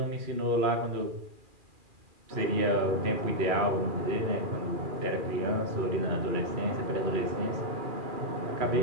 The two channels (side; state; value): left; late; 2.4 ms